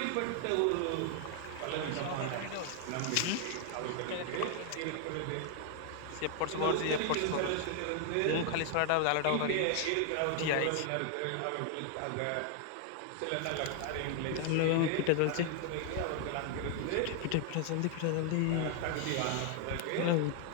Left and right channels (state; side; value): different; both; correlation 0.00